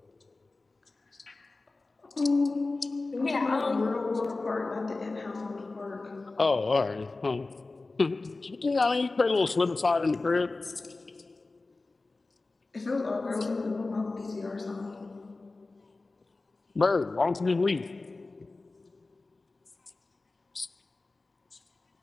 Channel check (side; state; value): right; quieter; 3.4 dB